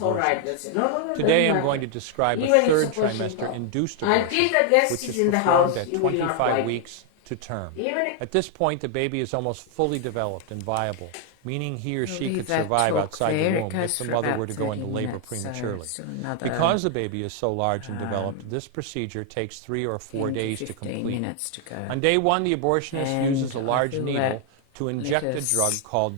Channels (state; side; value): different; both; correlation 0.00